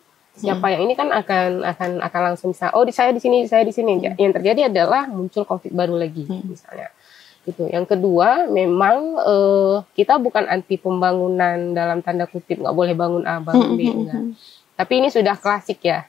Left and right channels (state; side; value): quieter; right; 9.4 dB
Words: siapa yang ini kan akan langsung bisa, saya di sini, saya di sini. Yang terjadi adalah muncul konflik baru lagi misalnya. Itu. Yang kedua, memang kita bukan anti pembangunan dalam tanda kutip, nggak boleh bangun A, bangun B, enggak. Tapi ini sudah klasik ya,